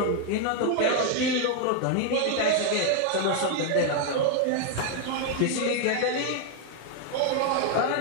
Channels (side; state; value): both; different; correlation 0.01